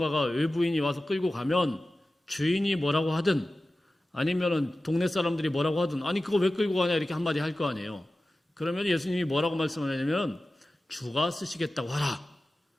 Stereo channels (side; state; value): both; normal; correlation 0.95